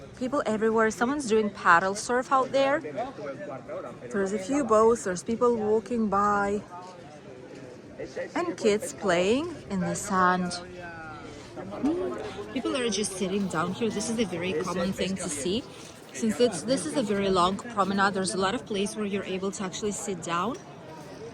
People everywhere. Someone's doing paddle surf out there. There's a few boats, there's people walking by, and kids playing in the sand. People are just sitting down here. This is a very common thing to see. Since this is a very long promenade, there's a lot of place where you're able to actually sit down.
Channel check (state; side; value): identical; both; correlation 1.00